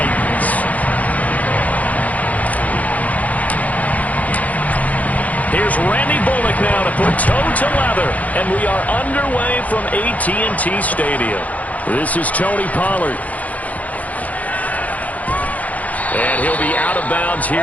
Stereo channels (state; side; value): late; right; 0.073 ms